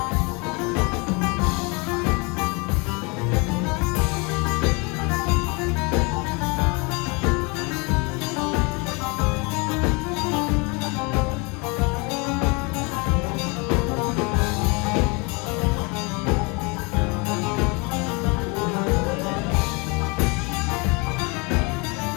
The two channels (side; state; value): right; quieter; 29.7 dB